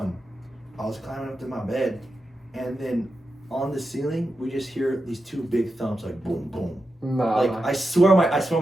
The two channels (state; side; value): normal; both; correlation 0.89